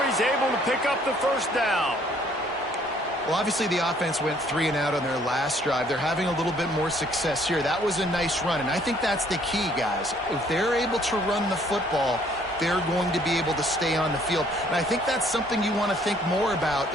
he's able to pick up the 1st down. Well, obviously the offense went 3 and out on their last drive. They're having a little bit more success here. That was a nice run, and I think that's the key, guys. If they're able to run the football, they're going to be able to stay on the field. And I think that's something you want to think more about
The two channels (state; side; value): normal; both; correlation 0.62